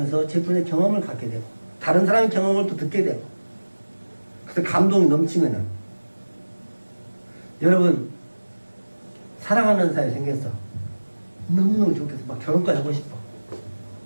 제품의 경험을 갖게 되고 다른 사람의 경험을 또 듣게 되고 그래서 감동이 넘치면은 여러분 사랑하는 사람이 생겼어. 너무너무 좋겠어. 막 결혼까지 하고 싶어.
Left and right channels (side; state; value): both; inverted; correlation -1.00